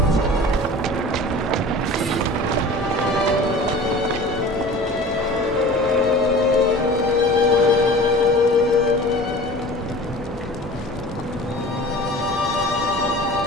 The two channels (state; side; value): normal; both; correlation 0.40